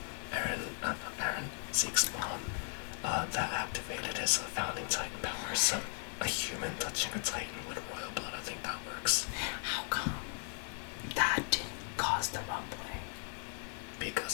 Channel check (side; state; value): right; silent; 53 dB below the other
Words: Zeke's mom, that activated his founding Titan powers. So a human touching a Titan with royal blood, I think that works. How come that didn't cause the rumbling?